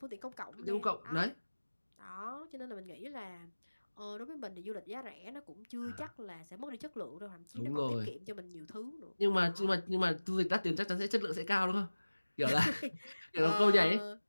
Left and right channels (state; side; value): inverted; both; correlation -1.00